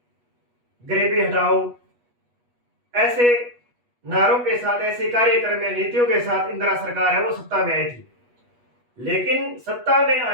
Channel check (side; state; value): left; late; 8.2 ms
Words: गरीबी हटाओ, ऐसे नारों के साथ, ऐसे कार्यक्रम या नीतियों के साथ इंदिरा सरकार है वो सत्ता में आई थी। लेकिन सत्ता में